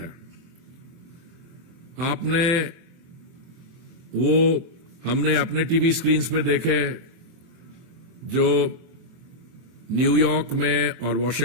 हमने अपने टीवी स्क्रीन्स पे देखे जो न्यूयॉर्क में और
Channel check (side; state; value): left; late; 23 ms